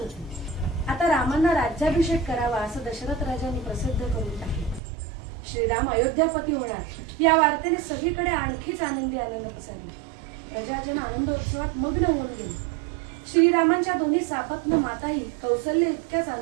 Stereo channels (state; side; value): drops out; left; at 4.8 s